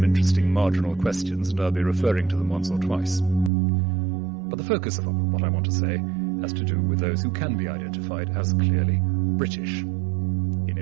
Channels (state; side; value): drops out; left; at 3.5 s